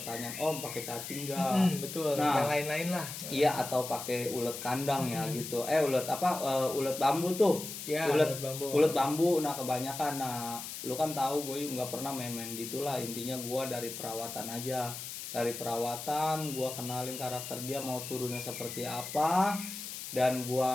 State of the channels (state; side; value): noise; left; hiss, 8 dB below the sound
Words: Om pakai cacing nggak? Betul. Nah, yang lain-lain lah. Iya, atau pakai ulet kandang ya gitu. Ulet apa? Ulet bambu tuh. Ya, ulet bambu. Ulet bambu. Nah, kebanyakan. Nah, lu kan tahu gue nggak pernah main-main gitulah. Intinya gua dari perawatan aja. Dari perawatan gua kenalin karakter dia mau turunnya seperti apa, dan